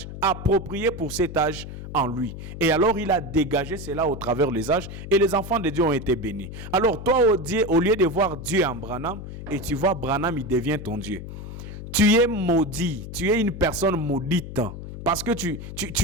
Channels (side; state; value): left; noise; hum, 10 dB below the sound